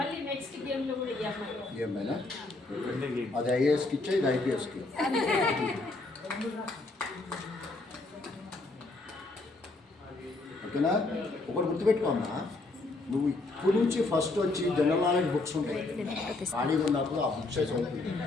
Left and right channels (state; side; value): quieter; right; 3.2 dB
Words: నెక్స్ట్ గేమ్ లో కూడా ఈ అమ్మాయి. ఏమైనా అది ఐఏఎస్కి ఇచ్చే, ఇది ఐపీఎస్కి. ఓకేనా? ఒకటి గుర్తుపెట్టుకోమ్మా, నువ్వు ఇప్పుడు నుంచి ఫస్ట్ వచ్చి జనరల్ నాలెడ్జ్ బుక్స్ ఉంటాయి, ఖాళీగా ఉన్నప్పుడు ఆ బుక్స్ చదువుతుంది.